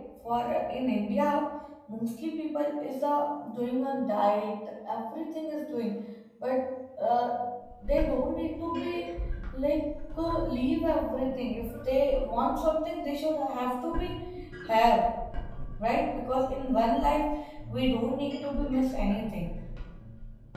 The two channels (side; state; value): both; identical; correlation 1.00